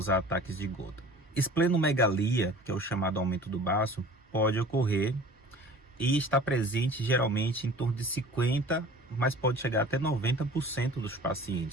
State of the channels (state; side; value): normal; both; correlation 0.44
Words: ataques de gota. Esplenomegalia, que é o chamado aumento do baço, pode ocorrer e está presente geralmente em torno de 50%, mas pode chegar até 90% dos